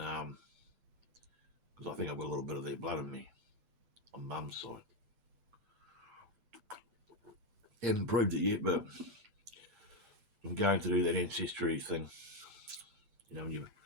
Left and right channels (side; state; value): left; late; 8.0 ms